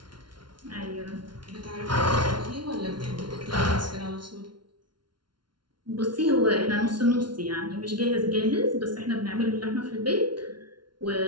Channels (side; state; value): left; late; 0.71 ms